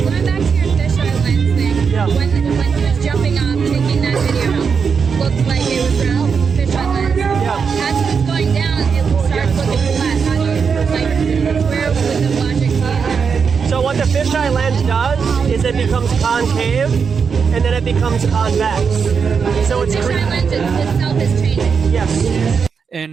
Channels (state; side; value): quieter; left; 6.0 dB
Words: back to your fisheye lens thing, when he was jumping off, taking that video, looked like it was round fisheye lens. As it was going down, it starts looking flat. How do you, like, where would the logic be in that? So what the fisheye lens does is it becomes concave, and then it becomes convex. So it's the fisheye lens itself is changing. Yes.